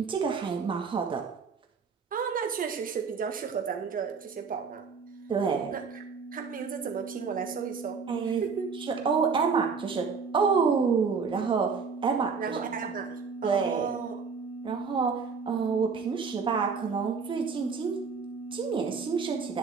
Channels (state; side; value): quieter; left; 5.4 dB